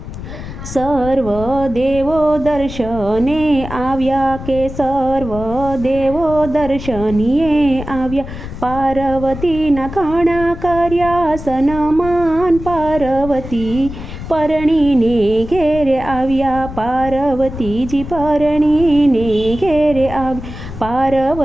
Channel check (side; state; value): left; noise; rumble, 11 dB below the sound